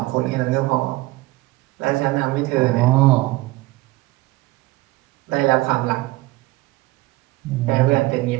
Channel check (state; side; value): quieter; left; 19.9 dB